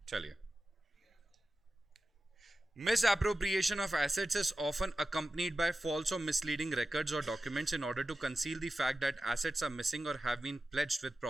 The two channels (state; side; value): normal; both; correlation 0.93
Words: चलिए। Misappropriation of assets is often accompanied by false or misleading records or documents in order to conceal the fact that assets are missing or have been pledged with